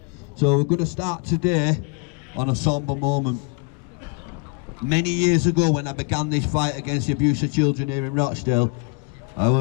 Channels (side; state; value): right; quieter; 34.9 dB